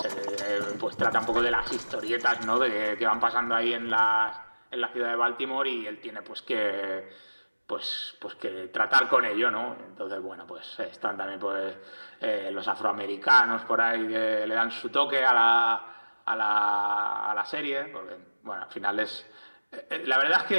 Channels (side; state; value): both; inverted; correlation -1.00